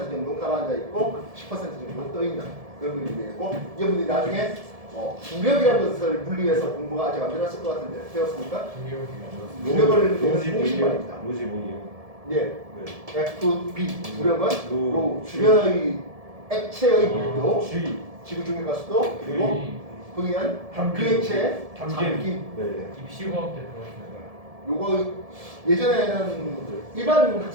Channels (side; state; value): left; late; 1.7 ms